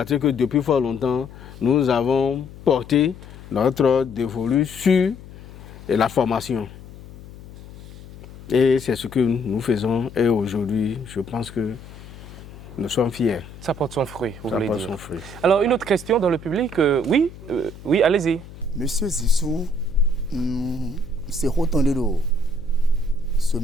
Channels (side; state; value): left; noise; hum, 17 dB below the sound